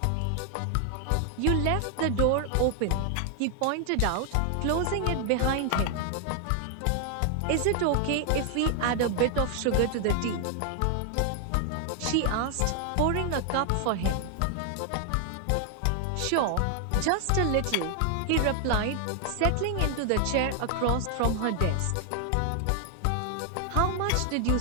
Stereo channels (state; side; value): different; both; correlation 0.00